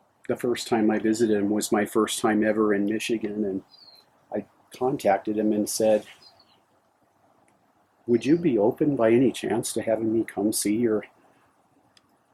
the first time I visited them was my first time ever in Michigan, and I contacted him and said, would you be open by any chance to having me come see your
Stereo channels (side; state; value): both; identical; correlation 1.00